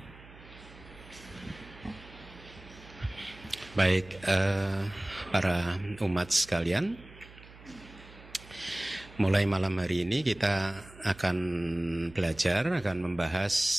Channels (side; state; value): right; noise; hum, 20 dB below the sound